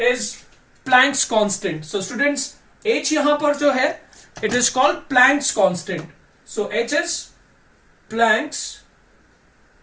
Planck's constant. So students, h यहाँ पर जो है, it is called Planck's constant. So h is Planck's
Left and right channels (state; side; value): identical; both; correlation 1.00